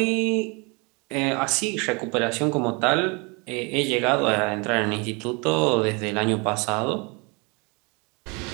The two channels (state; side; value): quieter; left; 30.1 dB